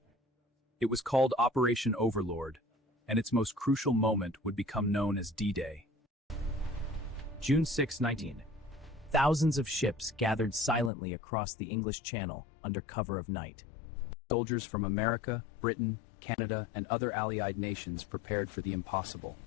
It was called Operation Overlord, and its most crucial moment would become known as D-Day. June 6, 19. Thousands of ships gathered silently across the English Channel under cover of night. Soldiers from America, Britain, Canada, and other Allied nations prepared for the impossible.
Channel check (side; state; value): right; drops out; at 10.9 s